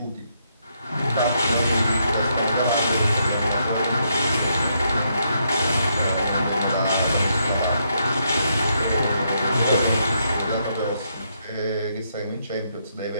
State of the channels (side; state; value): both; inverted; correlation -0.77